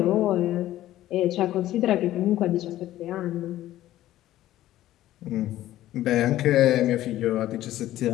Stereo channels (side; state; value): right; quieter; 14.2 dB